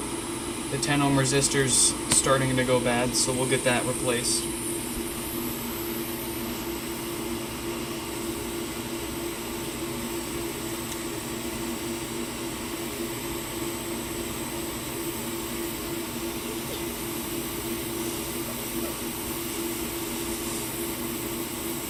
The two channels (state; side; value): identical; both; correlation 1.00